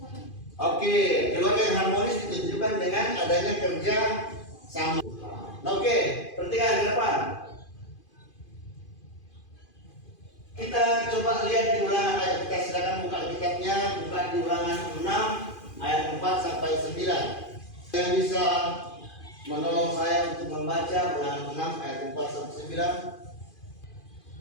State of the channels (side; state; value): right; late; 2.5 ms